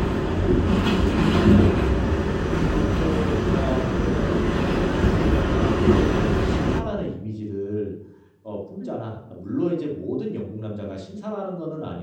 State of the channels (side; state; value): both; identical; correlation 1.00